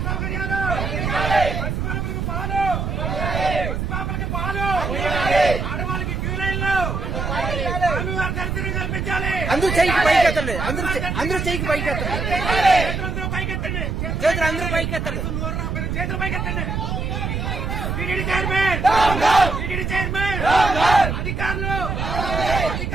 సౌకర్యాలు, పసిపాపలకి పాలు, ఆడవాళ్ళకి క్యూ లైన్లు, స్వామివారి దర్శనం కల్పించాలి. అందరూ చేయికి పైకెత్తండి, అందరూ చేయికి పైకెత్తండి, చేతులందరూ పైకెత్తండి, చేతులు అందరూ పైకెత్తండి. చేతులు పైకెత్తండి. టీటీడీ చైర్మన్, అధికారులు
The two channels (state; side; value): noise; right; rumble, 2 dB below the sound